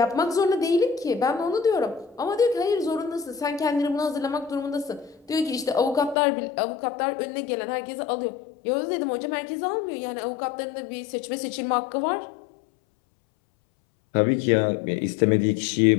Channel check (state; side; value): drops out; right; at 6.2 s